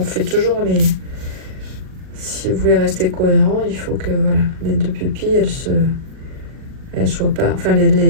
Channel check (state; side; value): late; left; 38 ms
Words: fait toujours les... Si vous voulez rester cohérent, il faut que voilà, les deux pupilles, elles soient pas... Enfin,